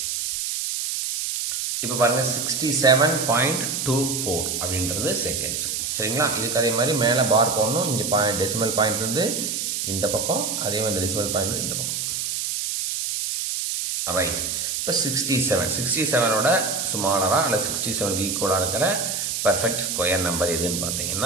இப்ப பாருங்க 67.24 அப்படின்றது செகண்ட்ஸ். சரிங்களா? இதுக்கு அதே மாதிரி மேலே பார் போடணும். இங்கே டெசிமல் பாயிண்ட் இருந்து இந்த பக்கம், அதே மாதிரி டெசிமல் பாயிண்ட் இந்த பக்கம். ரைட். இப்போ 67ஓட ஸ்மாலரா அல்ல 67க்கு ஈக்குவலாக இருக்கிற பர்ஃபெக்ட் ஸ்கொயர் நம்பர் எதுன்னு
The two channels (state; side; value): noise; right; hiss, 2 dB below the sound